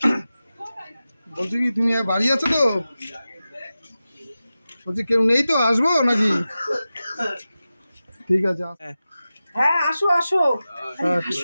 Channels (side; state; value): both; inverted; correlation -0.94